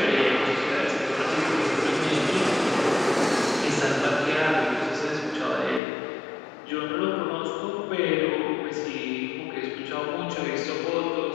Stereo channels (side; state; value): right; drops out; at 5.8 s